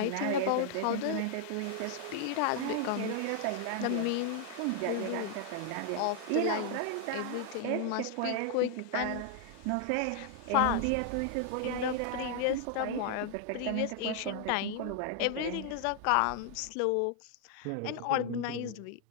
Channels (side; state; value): both; different; correlation 0.00